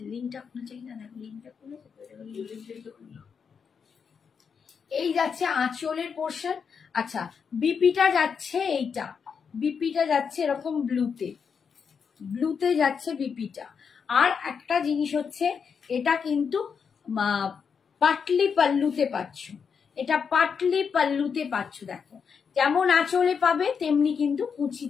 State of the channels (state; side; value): quieter; right; 6.3 dB